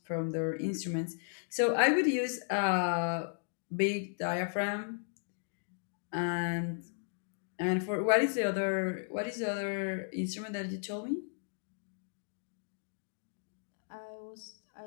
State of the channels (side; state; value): right; silent; digital silence